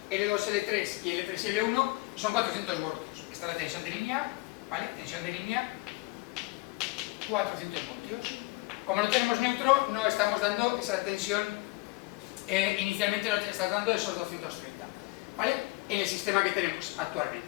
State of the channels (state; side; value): quieter; right; 23.7 dB